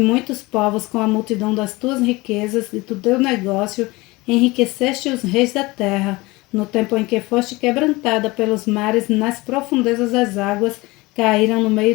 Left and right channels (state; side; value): quieter; right; 22.2 dB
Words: muitos povos com a multidão das tuas riquezas e do teu negócio, enriqueceste os reis da terra. No tempo em que foste quebrantada pelos mares, nas profundezas das águas, caíram no